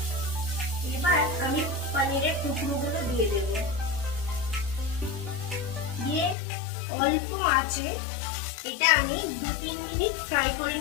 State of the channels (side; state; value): right; drops out; at 6.4 s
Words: এবার আমি পনিরের টুকরোগুলো দিয়ে দেব। দিয়ে অল্প আঁচে এটা আমি 2-3 মিনিট ফ্রাই করে